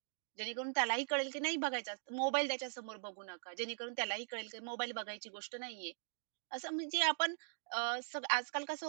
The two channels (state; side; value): silent; left; digital silence